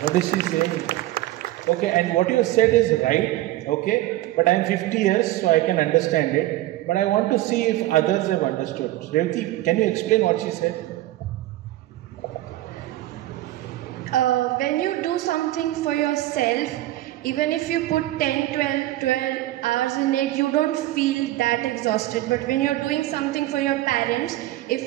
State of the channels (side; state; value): left; quieter; 15.9 dB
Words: Okay, and what you said is right. Okay, but I am 50 years, so I can understand it. But I want to see if others have understood. Revati, can you explain what she said? When you do something for yourself, even if you put 10, 12 hours in it, you don't feel that exhausted. But when you're doing something for your parents,